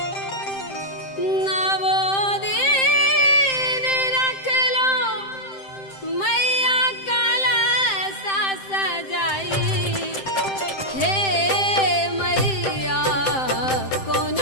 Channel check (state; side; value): late; right; 7.7 ms